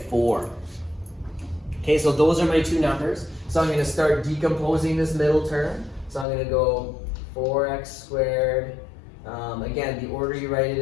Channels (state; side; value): drops out; right; at 6.2 s